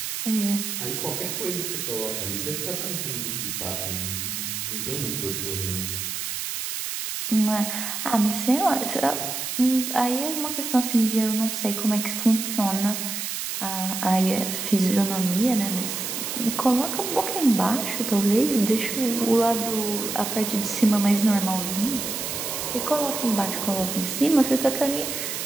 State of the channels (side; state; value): right; noise; hiss, 4 dB below the sound